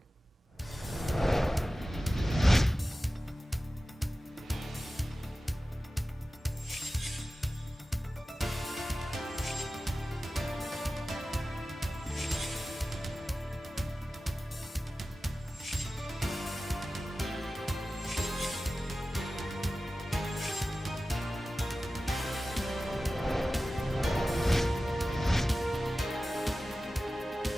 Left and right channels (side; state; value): both; normal; correlation 0.95